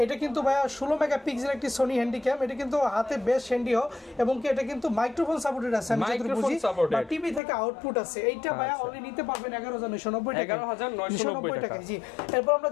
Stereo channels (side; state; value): right; drops out; at 7.4 s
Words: এটা কিন্তু ভাইয়া 16 মেগাপিক্সেল একটি সনি হ্যান্ডিক্যাম, এটা কিন্তু হাতে বেশ হ্যান্ডিও, এবং কি এটা কিন্তু মাইক্রোফোন সাপোর্টেড আছে, আমি যতটুকু বুঝি, বা টিভি থেকে আউটপুট আছে। এইটা ভাইয়া অনলি নিতে পারবেন 11,990 টাকা, 11,990 টাকা। জি, এরপর আমরা